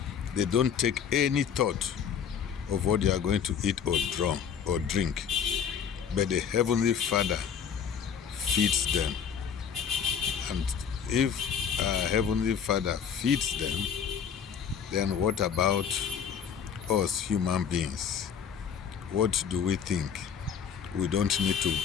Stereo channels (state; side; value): quieter; right; 7.4 dB